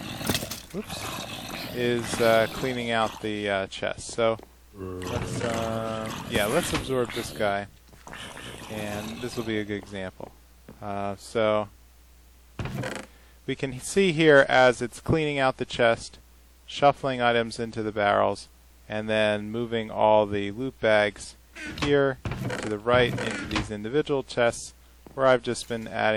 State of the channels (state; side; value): identical; both; correlation 1.00